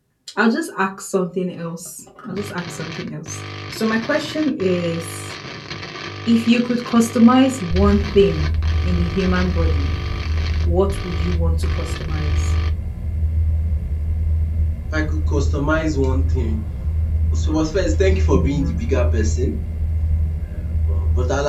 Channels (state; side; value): identical; both; correlation 1.00